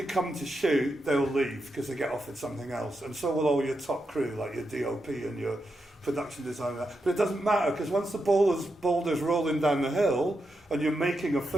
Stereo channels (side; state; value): both; normal; correlation 0.86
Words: come to shoot, they'll leave because they get offered something else. And so will all your top crew, like your DOP and your production designer. But it doesn't matter, because once the boulder's rolling down the hill and you're making a